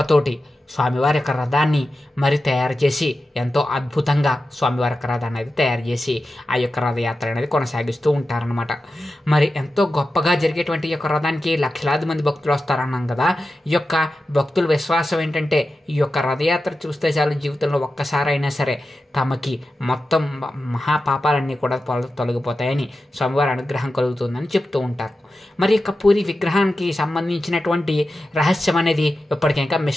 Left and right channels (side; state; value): both; normal; correlation 0.92